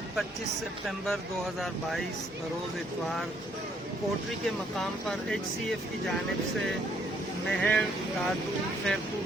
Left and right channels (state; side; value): normal; both; correlation 0.68